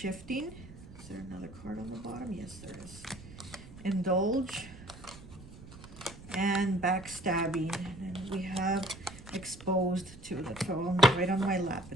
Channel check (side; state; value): right; noise; rumble, 17 dB below the sound